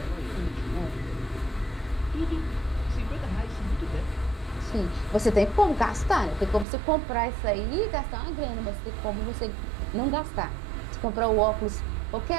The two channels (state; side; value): drops out; left; at 6.7 s